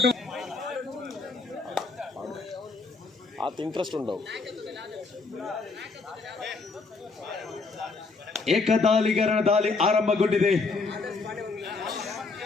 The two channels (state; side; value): quieter; right; 4.0 dB